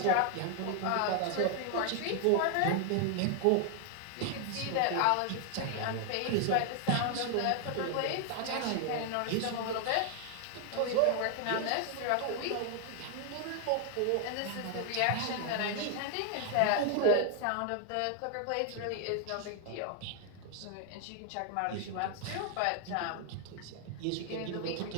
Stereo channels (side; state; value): both; different; correlation 0.00